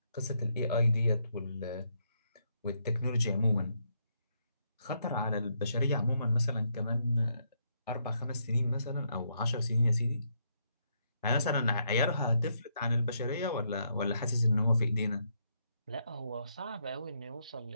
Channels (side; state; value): both; inverted; correlation -0.76